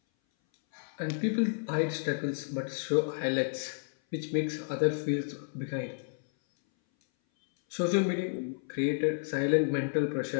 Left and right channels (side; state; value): right; silent; 57 dB below the other